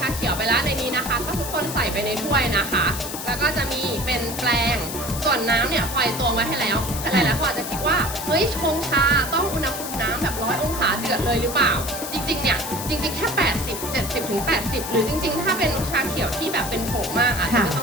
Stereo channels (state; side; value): noise; left; hiss, 7 dB below the sound